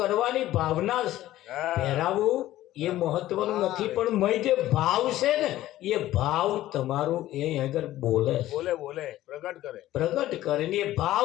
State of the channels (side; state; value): right; quieter; 14.7 dB